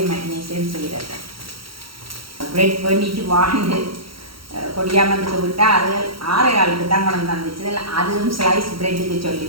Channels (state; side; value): late; left; 0.74 ms